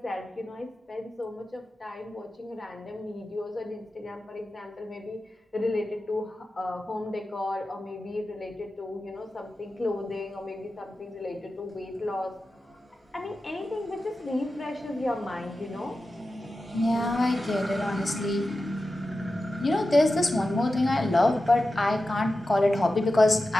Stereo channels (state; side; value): normal; both; correlation 0.93